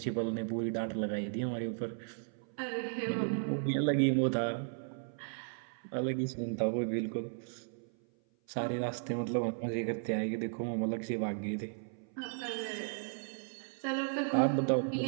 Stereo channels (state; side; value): silent; left; 54 dB below the other